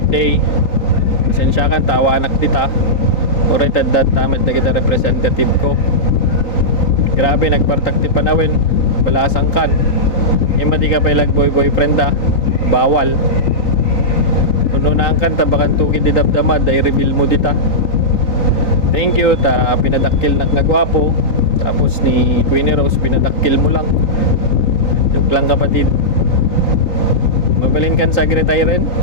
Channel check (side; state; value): right; late; 3.9 ms